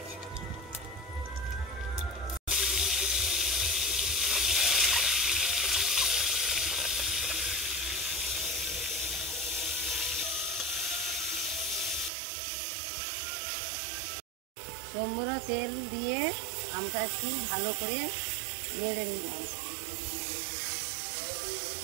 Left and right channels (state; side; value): drops out; left; at 12.1 s